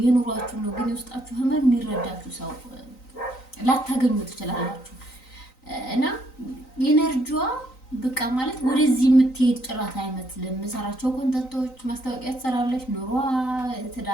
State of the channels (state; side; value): late; right; 3.9 ms